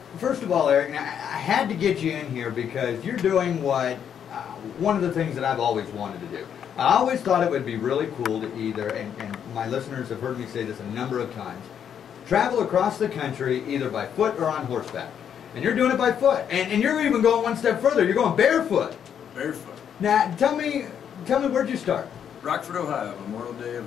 first of all, Eric, now, I had to get you in here because you're doing what, one of the things that I've always wanted to do. I always thought it would be really cool to either, and my listeners have heard me say this a number of times, travel across the country either by foot or on horseback. And you're doing it by foot. And you're even going one step further. You're going barefoot. Barefoot. Now, tell me where'd you start? Rockford, Ohio, Memorial Day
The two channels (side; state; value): right; quieter; 8.5 dB